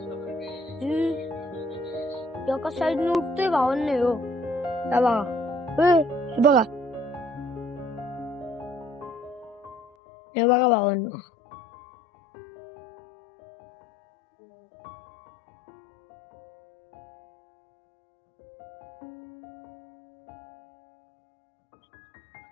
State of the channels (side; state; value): right; drops out; at 9.8 s